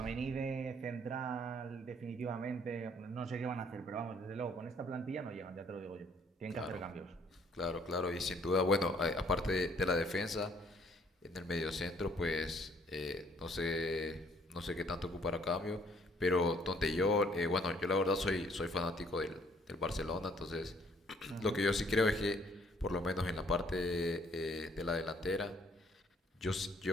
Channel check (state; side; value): normal; both; correlation 0.63